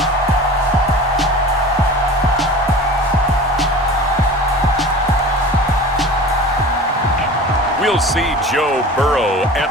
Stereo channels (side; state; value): both; normal; correlation 0.37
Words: We'll see Joe Burrow and